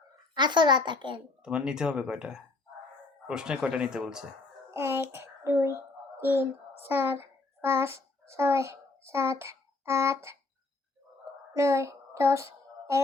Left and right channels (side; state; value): right; quieter; 3.3 dB